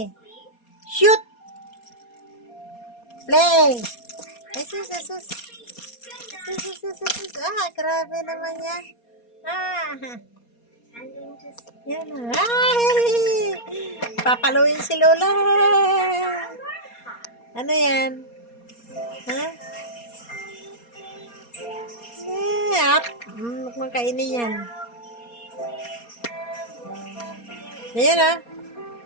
Shoot. Play. Ay, sus. Grabe naman yan. Yan na. Ay! Papaluin si Lola. Ano yan? Ha? Up. Huwag kainin yan. Ayan ah.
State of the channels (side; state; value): right; late; 4.2 ms